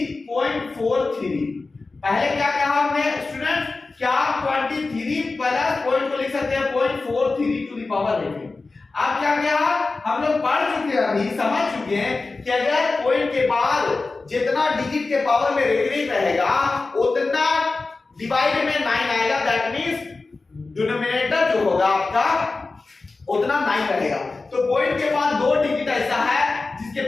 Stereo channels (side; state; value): right; quieter; 3.7 dB